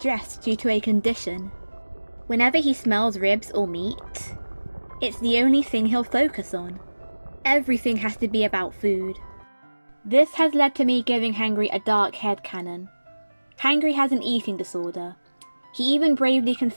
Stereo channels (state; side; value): inverted; both; correlation -1.00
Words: due to a condition. Whenever he smells ribs or meat, it's the only thing he'll focus on. Everything has to be about food. This has led to me giving Hangry a dark headcanon. Hangry has an eating disorder. He even bravely